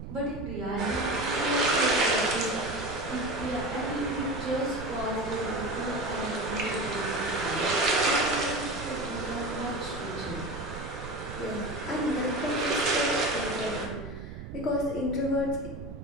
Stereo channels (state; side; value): noise; right; rumble, 10 dB below the sound